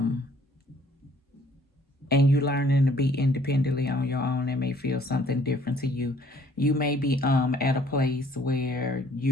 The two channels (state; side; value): normal; both; correlation 0.60